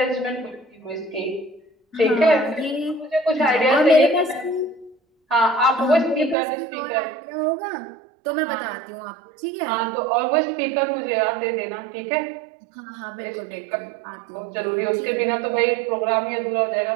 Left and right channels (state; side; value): drops out; left; at 6.4 s